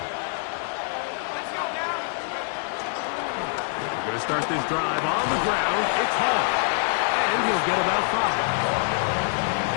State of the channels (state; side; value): silent; right; 60 dB below the other